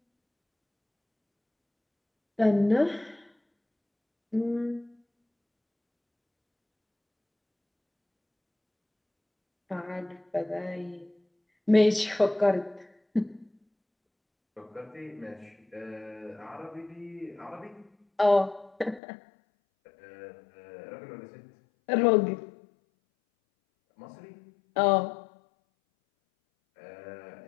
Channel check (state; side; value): drops out; right; at 19.0 s